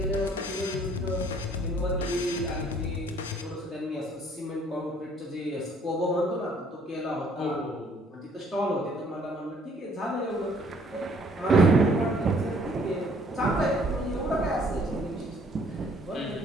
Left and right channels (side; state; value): both; normal; correlation 0.60